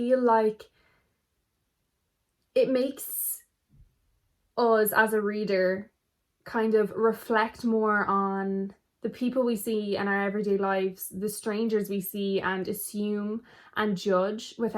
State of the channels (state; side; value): identical; both; correlation 1.00